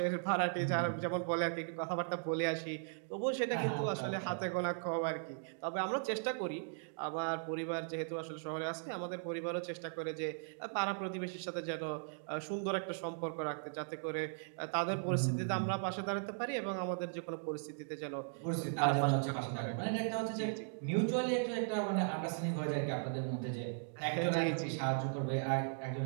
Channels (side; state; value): left; silent; digital silence